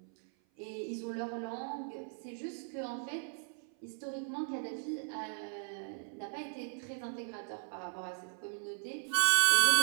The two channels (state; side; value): silent; left; 53 dB below the other